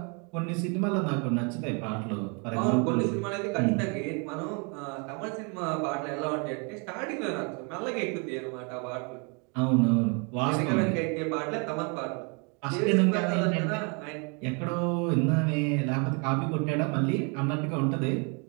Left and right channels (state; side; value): quieter; left; 34.3 dB